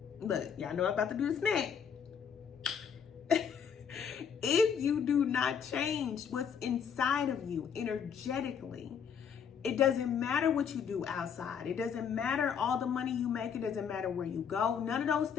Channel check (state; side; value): quieter; right; 7.3 dB